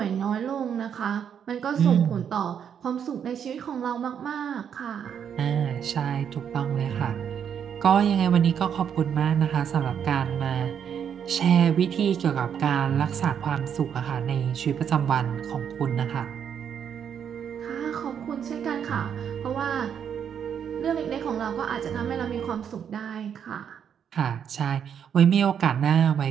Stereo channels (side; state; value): left; quieter; 8.2 dB